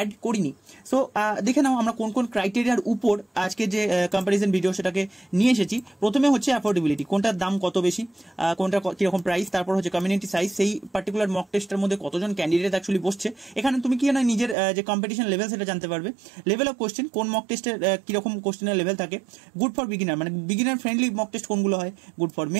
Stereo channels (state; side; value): drops out; left; at 14.6 s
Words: করিনি। সো দেখে নাও আমরা কোন কোন ক্রাইটেরিয়ার উপর আজকে যে কম্প্যারিজন ভিডিও সেটাকে নিয়ে এসেছি। প্রথমে হচ্ছে অ্যাফোর্ডেবিলিটি, কোনটার দাম কত বেশি, কোনটা কিরকম প্রাইস। তারপর হচ্ছে কমিউনিটি সাইজ, সেই পার্টিকুলার মক টেস্টের মধ্যে কতজন ক্যান্ডিডেট অ্যাকচুয়ালি বসছে। এখানে তুমি কি না নিজের যে কম্পিটিশন লেভেল সেটা জানতে পারবে। লেভেল অফ কোশ্চেন, কোন মক টেস্টের কিরকম কোশ্চেনের লেভেল থাকে। গুড ফর বিগিনার, মানে বিগিনার ফ্রেন্ডলি মক টেস্ট কোনগুলো হয়। গুড ফর